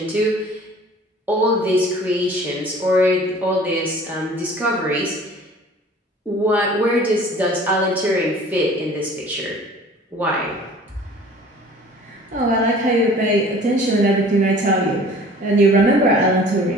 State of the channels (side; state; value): both; normal; correlation 0.48